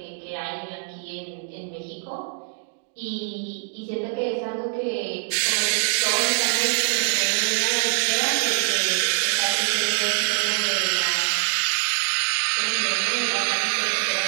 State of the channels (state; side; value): silent; left; 63 dB below the other